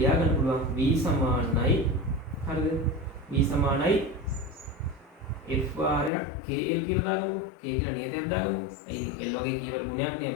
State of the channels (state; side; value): drops out; right; at 6.1 s